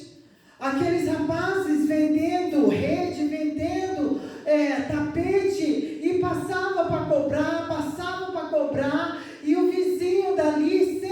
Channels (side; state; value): both; identical; correlation 1.00